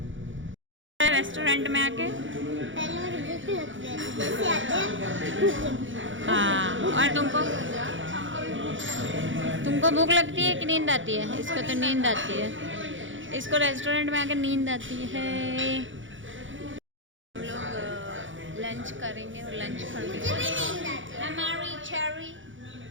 रेस्टोरेंट में आके हाँ, और तुमको भूख लगती है कि नींद आती है? इसको तो नींद आती है, इसको रेस्टोरेंट में आके नींद आती है। हम लोग लंच करेंगे और लंच करेंगे। हमारी cherry,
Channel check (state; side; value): late; left; 0.56 ms